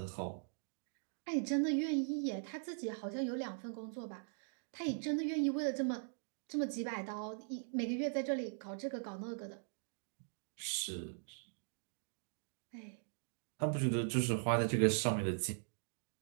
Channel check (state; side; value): silent; left; digital silence